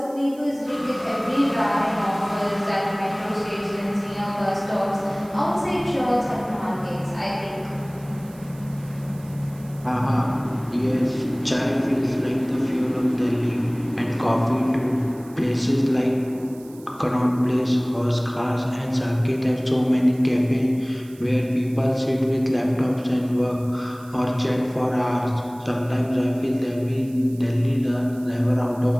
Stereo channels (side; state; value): right; noise; hiss, 24 dB below the sound